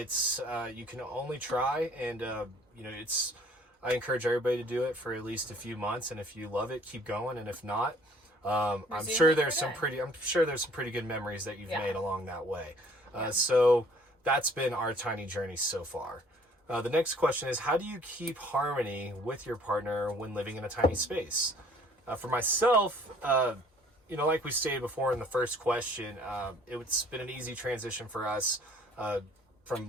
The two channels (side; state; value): both; normal; correlation 0.56